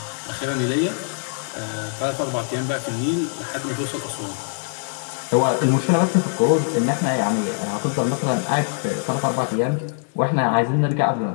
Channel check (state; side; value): silent; right; digital silence